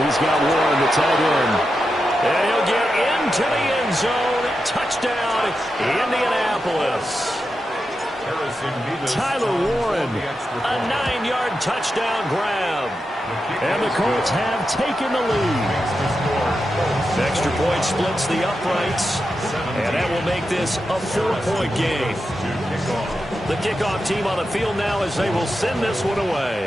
he's got Warren, the tight end. And he'll get into the end zone. Touchdown, Indianapolis. Tyler Warren, a 9-yard touchdown grab. And the Colts have taken the lead. Extra point splits the uprights. And that will make this a 4-point game. The kickoff team on the field now as they will send this one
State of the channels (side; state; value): both; normal; correlation 0.89